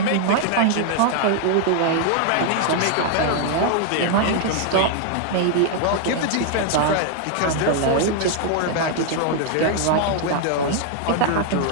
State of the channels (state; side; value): different; both; correlation 0.00